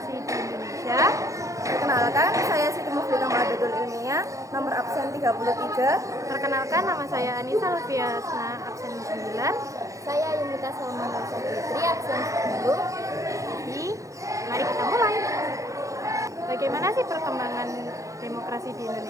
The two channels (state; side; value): late; left; 0.15 ms